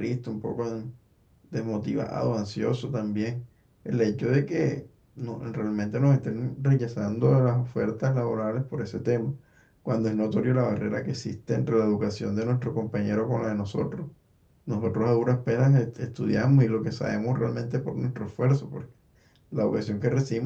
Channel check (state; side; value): identical; both; correlation 1.00